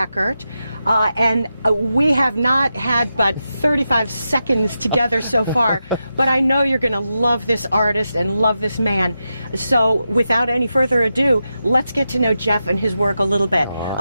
and we have not had but 35 seconds together so far, but I know you're going to love this artist and love this man. So without any further ado, let's get to know Jeff and his work a little bit.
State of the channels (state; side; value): inverted; both; correlation -0.88